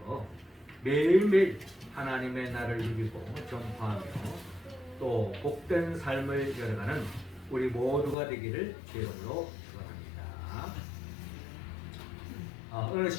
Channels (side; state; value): right; drops out; at 8.2 s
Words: 매일매일 하나님의 날을 누리고 전파하며 또 복된 삶을 열어가는 우리 모두가 되기를 주의 이름으로 축원합니다. 어느